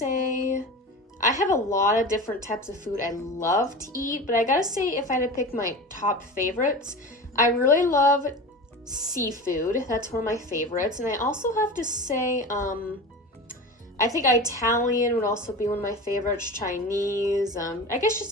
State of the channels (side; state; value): both; normal; correlation 0.31